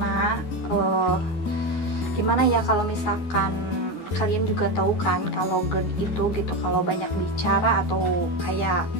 gimana ya, kalau misalkan kalian juga tahu kan kalau GERD itu gitu, kalau banyak bicara atau kayak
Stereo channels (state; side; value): late; right; 12 ms